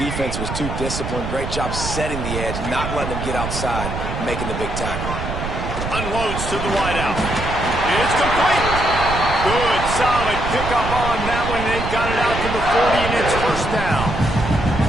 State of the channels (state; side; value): noise; right; rumble, 5 dB below the sound